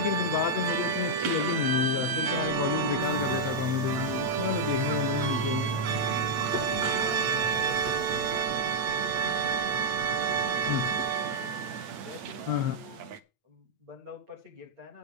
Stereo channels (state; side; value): late; left; 8.7 ms